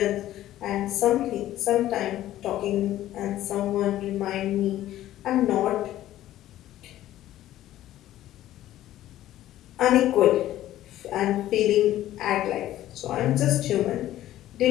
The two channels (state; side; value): quieter; right; 13.7 dB